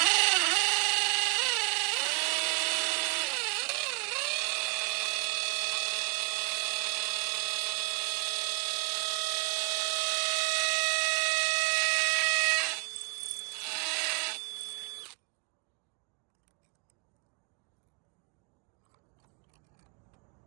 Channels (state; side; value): quieter; left; 32.5 dB